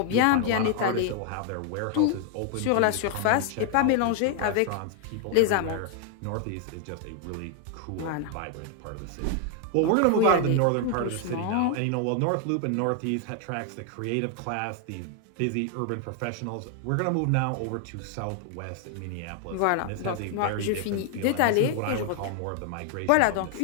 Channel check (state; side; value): different; both; correlation 0.00